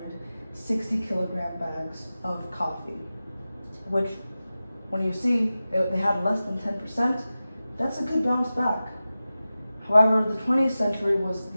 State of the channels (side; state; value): both; inverted; correlation -0.95